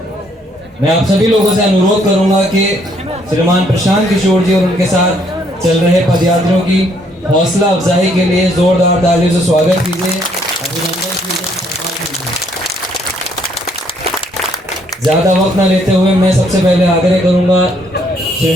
मैं आप सभी लोगों से अनुरोध करूंगा कि श्रीमान प्रशांत किशोर जी और उनके साथ चल रहे पदयात्रियों की हौसला अफजाई के लिए जोरदार तालियों से स्वागत कीजिए, अभिनंदन कीजिए। ज्यादा वक्त न लेते हुए मैं सबसे पहले आग्रह करूंगा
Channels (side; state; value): both; normal; correlation 0.68